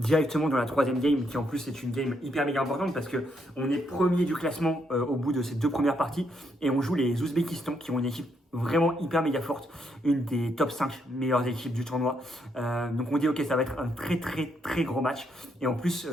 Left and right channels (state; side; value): normal; both; correlation 0.76